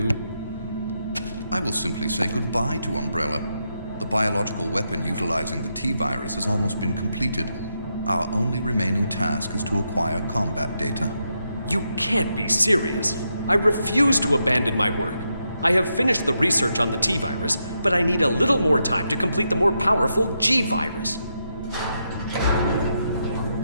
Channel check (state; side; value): inverted; both; correlation -0.83